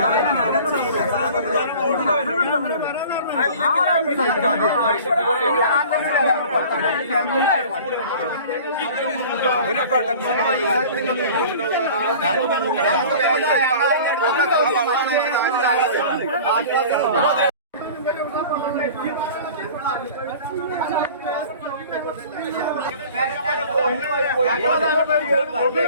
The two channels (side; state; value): both; inverted; correlation -0.43